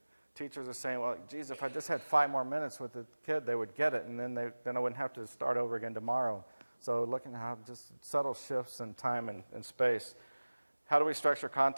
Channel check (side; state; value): both; inverted; correlation -1.00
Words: Teachers are saying, well, geez, if I just had 5 more minutes with the kid, they would get it, and then I wouldn't have to start over again tomorrow. So looking at how just subtle shifts in time and space. How do we structure